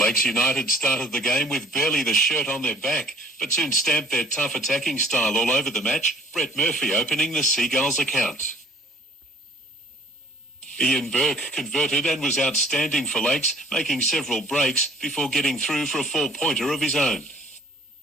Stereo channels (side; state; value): both; normal; correlation 0.53